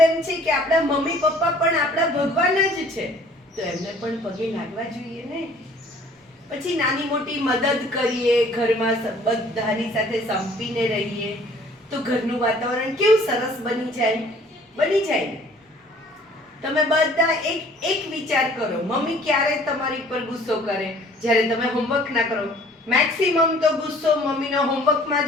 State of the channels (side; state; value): both; normal; correlation 0.54